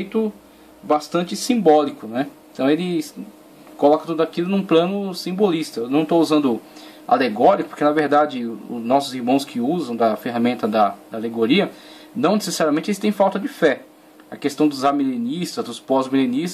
bastante simbólico, né? Então ele coloca tudo aquilo num plano simbolista. Eu não estou usando alegórico, porque na verdade os nossos irmãos que usam da ferramenta da alegoria, não necessariamente eles têm falta de fé. A questão dos amilenistas, dos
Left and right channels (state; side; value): identical; both; correlation 1.00